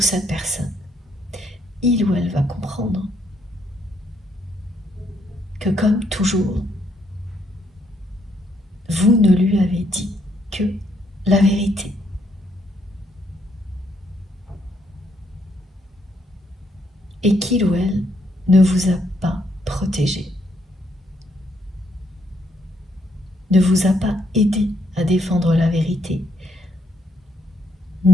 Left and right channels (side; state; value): both; normal; correlation 0.73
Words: cette personne, il ou elle va comprendre que comme toujours, vous ne lui avez dit que la vérité. Et qu'il ou elle ne vous a pas protégé, ne vous a pas aidé à défendre la vérité,